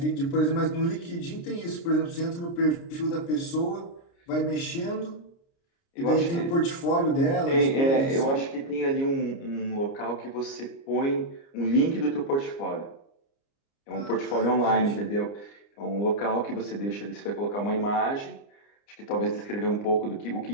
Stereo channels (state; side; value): late; right; 29 ms